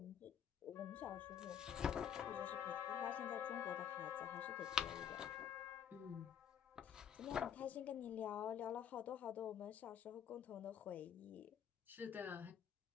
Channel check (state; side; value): quieter; right; 8.8 dB